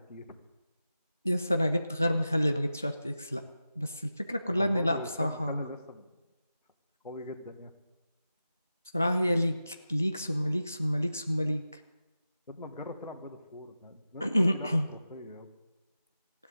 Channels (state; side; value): inverted; both; correlation -0.93